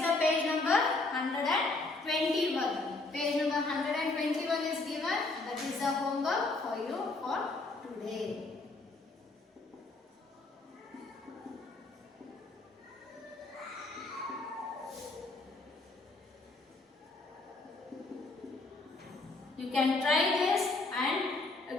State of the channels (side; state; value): right; quieter; 3.3 dB